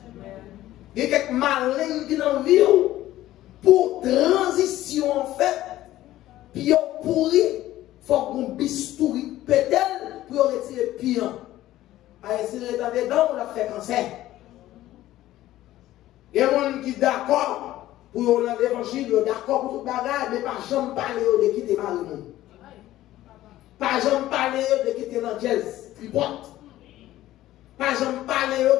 Il y a quelques malins qui dans la vie pour transition en fait, puis on pourri, il faut qu'on bistouri peut-être pour retirer pire. À essayer d'être dedans, on l'a fait cancer. Il y a des gens qui sont d'accord pour l'évangile, d'accord pour tout bagage, mais pas jamais parler de quitter Marie. Pas jamais parler de quitter l'anglaise, tripote. Pas jamais parler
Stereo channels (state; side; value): quieter; right; 14.7 dB